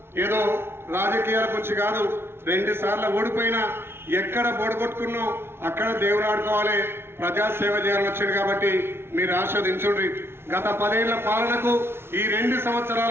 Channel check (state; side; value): late; left; 0.12 ms